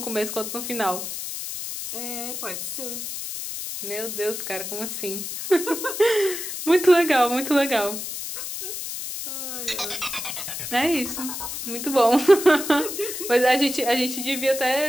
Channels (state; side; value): noise; left; hiss, 6 dB below the sound